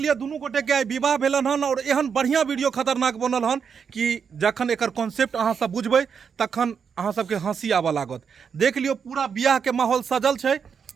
दुनू गोटे के आई विवाह भेलन हन और एहन बढ़िया वीडियो खतरनाक बनल हन कि जखन एकर कॉन्सेप्ट अहाँ सब बुझबै तखन अहाँ सबके हंसी आबऽ लागत। देख लियो पूरा बियाह के माहौल सजल छै,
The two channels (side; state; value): left; quieter; 6.6 dB